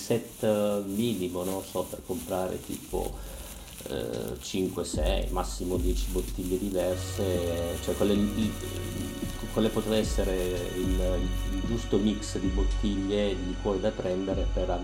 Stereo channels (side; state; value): both; identical; correlation 1.00